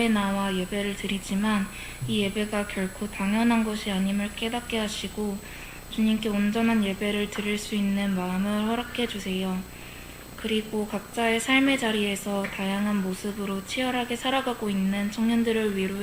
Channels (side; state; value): both; identical; correlation 1.00